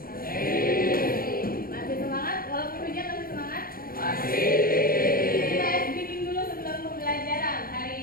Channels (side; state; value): right; late; 0.42 ms